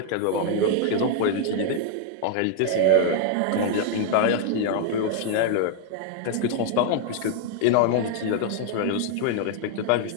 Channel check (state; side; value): different; both; correlation 0.00